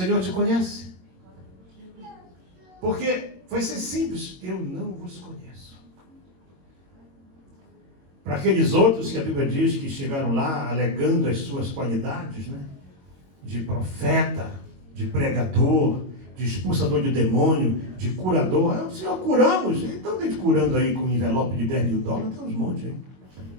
te conhece? Porque vai ser simples, eu não vos conheço. Para aqueles outros que a Bíblia diz que chegaram lá alegando as suas qualidades, né? De profeta, de pregador, de expulsador de demônio, de curador. Senhor, curamos. Então tem gente curando aí com um envelope de $10 mil, tem uns montes aí.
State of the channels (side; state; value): left; late; 22 ms